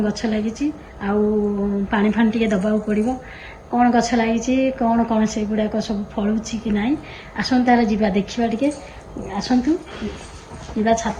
ଗଛ ଲାଗିଛି ଆଉ ପାଣି ଫାଣି ଟିକେ ଦବାକୁ ପଡ଼ିବ। କ'ଣ ଗଛ ଲାଗିଛି କ'ଣ କ'ଣ ସେଗୁଡ଼ାକ ସବୁ ଫଳୁଛି କି ନାହିଁ ଆସନ୍ତୁ ତାର ଯିବା ଦେଖିବା ଟିକେ। ଆସନ୍ତୁ ଯିବା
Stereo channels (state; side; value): identical; both; correlation 1.00